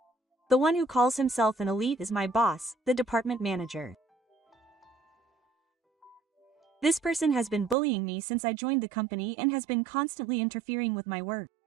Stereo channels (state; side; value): drops out; left; at 7.8 s